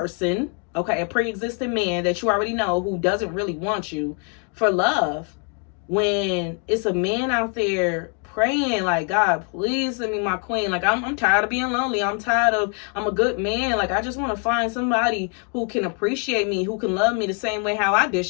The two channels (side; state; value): right; quieter; 39.6 dB